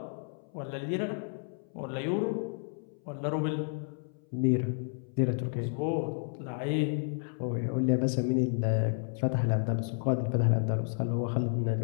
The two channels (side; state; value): right; silent; 57 dB below the other